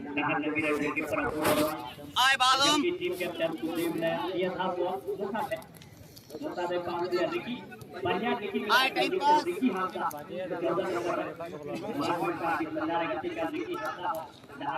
नहान लगी रही के पर आए बालम की टीम कैप्टन सुदीप ने ये था वो मुसा दे पास दिया रिकी बढ़िया रिकी रिकी हां का 14 नंबर मार्क का बंदा गति का रिकी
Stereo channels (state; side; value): identical; both; correlation 1.00